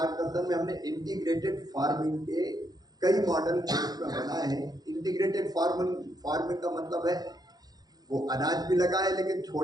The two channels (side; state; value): left; late; 0.19 ms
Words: में हमने इंटीग्रेटेड फार्मिंग के कई मॉडल बनाए हैं। इंटीग्रेटेड फार्मिंग का मतलब है वो अनाज भी लगाए, लेकिन